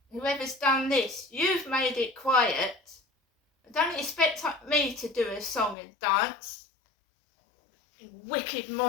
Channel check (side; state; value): right; drops out; at 5.8 s